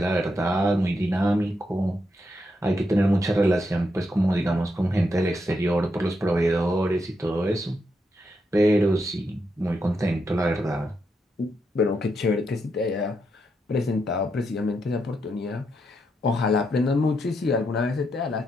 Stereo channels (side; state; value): both; normal; correlation 0.81